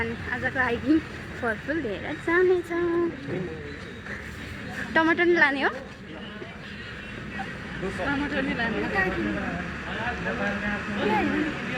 आजको हाइकिङ फलफुल लिएर जानेछौँ। टमाटर नि लाने हो? टमाटर नि लाने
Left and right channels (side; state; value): both; identical; correlation 1.00